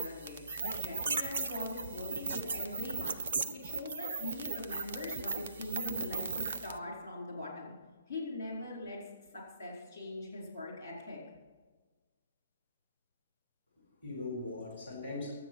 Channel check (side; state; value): both; inverted; correlation -0.65